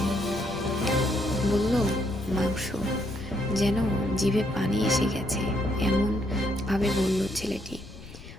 বলল, মাংস। যেন জিভে পানি এসে গেছে এমন ভাবে বলল ছেলেটি।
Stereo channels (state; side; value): noise; left; rumble, 16 dB below the sound